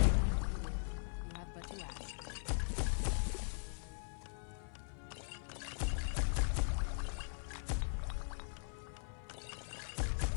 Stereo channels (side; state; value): right; silent; 51 dB below the other